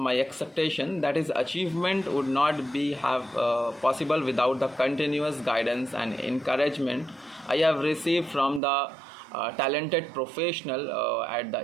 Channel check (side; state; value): left; drops out; at 8.6 s